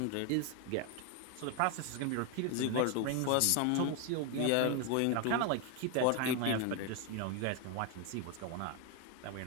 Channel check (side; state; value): both; different; correlation 0.01